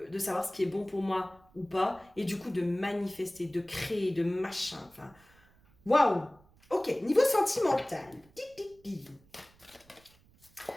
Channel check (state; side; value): noise; right; rumble, 29 dB below the sound